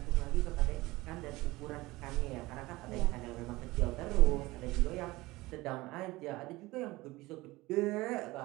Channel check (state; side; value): quieter; left; 20.2 dB